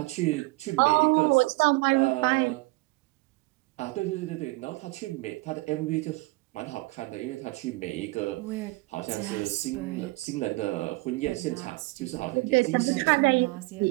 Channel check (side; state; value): left; quieter; 23.3 dB